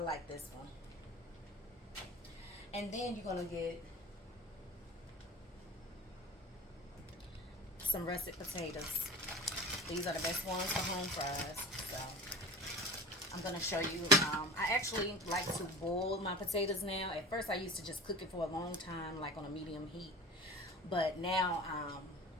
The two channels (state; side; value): normal; both; correlation 0.35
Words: this one. And then you're gonna get some russet potatoes. These are the best ones for home fries. So I'm gonna show you. I actually like to boil my potatoes now. At first I used to just cook it for a long time, like on a medium heat, but now